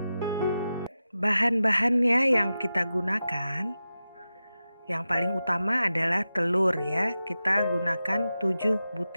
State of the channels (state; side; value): inverted; both; correlation -0.92